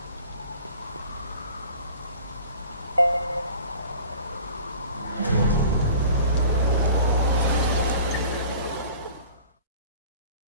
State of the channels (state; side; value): inverted; both; correlation -0.44